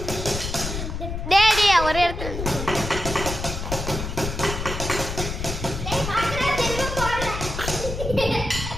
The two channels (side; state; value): left; noise; rumble, 5 dB below the sound